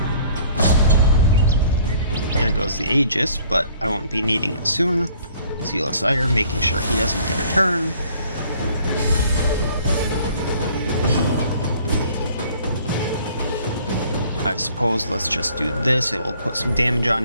There goes the Aegis, but I won't be needing it soon. Sealess Ire, making sure he doesn't get a turn. I suppose let's just do this. It'll put some damage on,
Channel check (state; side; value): inverted; both; correlation -0.56